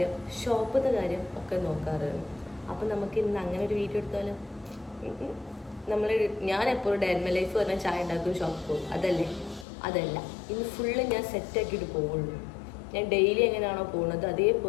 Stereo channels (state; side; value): drops out; right; at 9.7 s